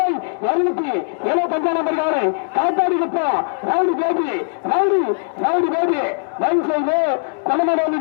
275 நம்பர் காலை காத்தாடிக்கு போ rowdy baby rowdy rowdy baby பைசையோ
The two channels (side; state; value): right; silent; digital silence